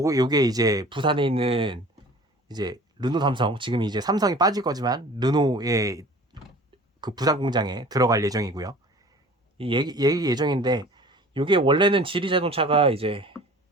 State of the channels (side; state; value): both; normal; correlation 0.45